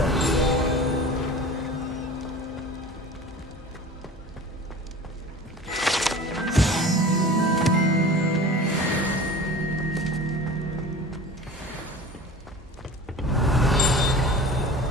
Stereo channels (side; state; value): both; normal; correlation 0.39